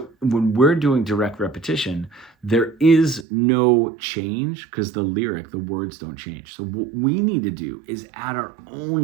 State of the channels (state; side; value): drops out; left; at 3.2 s